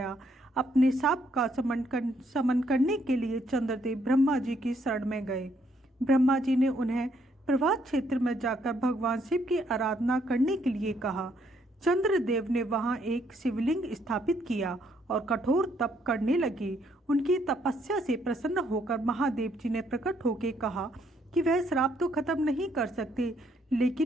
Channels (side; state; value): both; normal; correlation 0.70